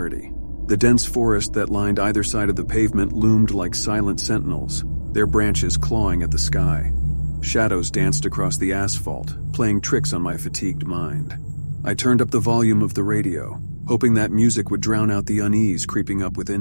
The dense forest that lined either side of the pavement loomed like silent sentinels, their branches clawing at the sky. Shadows danced across the asphalt, playing tricks on my fatigued mind. I turned up the volume of the radio, hoping that music would drown out the unease creeping up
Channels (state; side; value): inverted; both; correlation -1.00